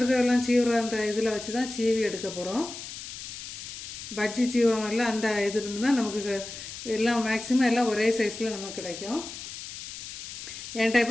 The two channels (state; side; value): noise; left; hiss, 10 dB below the sound